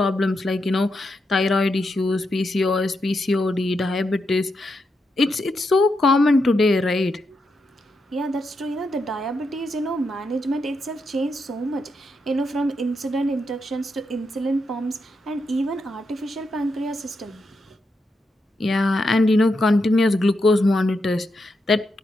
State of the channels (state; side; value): normal; both; correlation 0.84